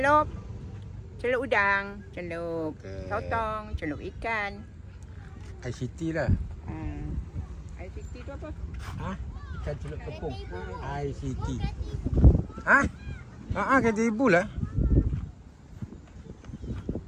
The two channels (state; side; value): identical; both; correlation 1.00